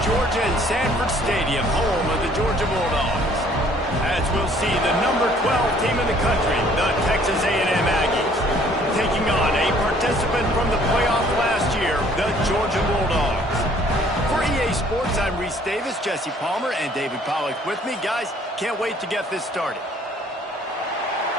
Georgia and Sanford Stadium, home of the Georgia Bulldogs. As we'll see, the number 12 team in the country, the Texas A&M Aggies, taking on a participant from the playoff last year, the Georgia Bulldogs. For EA Sports, I'm Reese Davis, Jesse Palmer, and David Pollack with me. Guys, can't wait to get this started.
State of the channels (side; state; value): both; normal; correlation 0.59